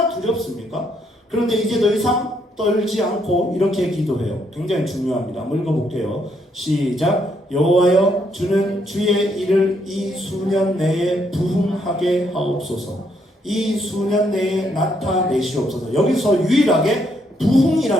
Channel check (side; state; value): both; normal; correlation 0.73